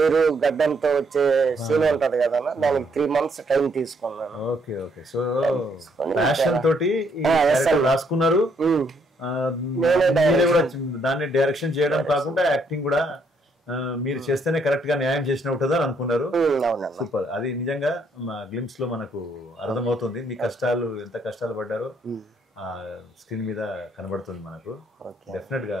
గడ్డంతో వచ్చే సీన్ ఉంటది కదా, దానికి 3 months టైం తీసుకున్నాను. రాసుకున్నారు, దాన్ని డైరెక్షన్ చేయడం కాకుండా యాక్టింగ్ కూడా మీరు చేస్తేనే కరెక్ట్ గా న్యాయం చేసినట్టుందా అనుకున్నారు. సూపర్. అది నిజంగా గ్లిమ్స్ లో మనకు అర్థమవుతుంది, మీ కష్టాలు ఎంత కష్టాలు పడ్డారో స్క్రీన్ మీద కనబడుతుంది మనకు. డెఫినెట్ గా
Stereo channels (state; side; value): normal; both; correlation 0.70